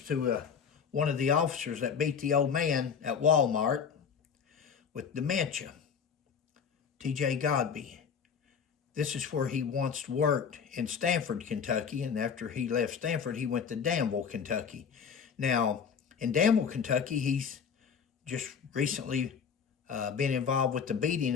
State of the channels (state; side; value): quieter; right; 6.7 dB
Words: to one of the officers that beat the old man at Walmart with dementia, T.J. Godby. This is where he once worked in Stanford, Kentucky, and after he left Stanford, he went to Danville, Kentucky. Now, in Danville, Kentucky, he's just recently been involved with the beating